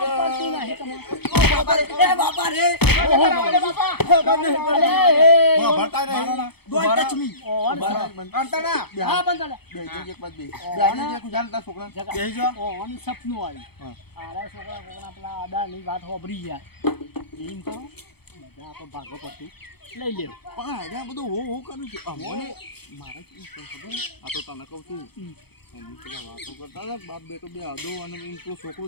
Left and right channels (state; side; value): late; right; 0.97 ms